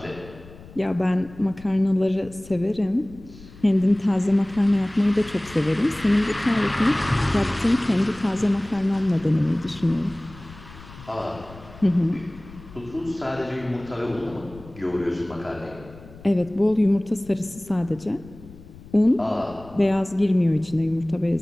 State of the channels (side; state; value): left; noise; rumble, 19 dB below the sound